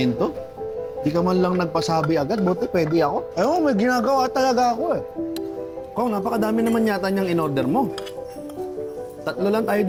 Di ka man lang nagpasabi agad, buti pwede ako. Ewan, may ginagawa talaga ako eh. Kung napakadami naman yata niyang in-order mo. 3 lang tayo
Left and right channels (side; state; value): both; identical; correlation 1.00